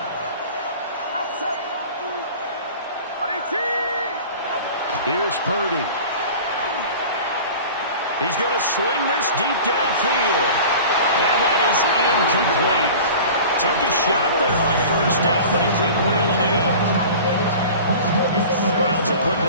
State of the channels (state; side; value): inverted; both; correlation -0.39